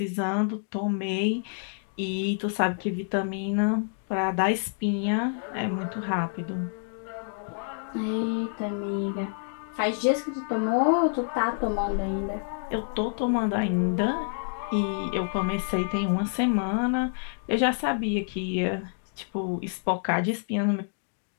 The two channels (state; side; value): silent; right; digital silence